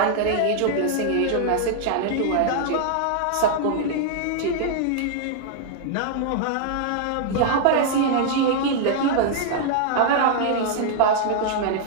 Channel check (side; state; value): both; different; correlation -0.01